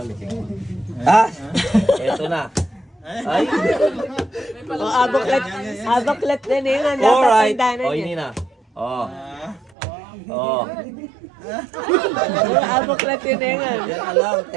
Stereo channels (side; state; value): left; drops out; at 9.8 s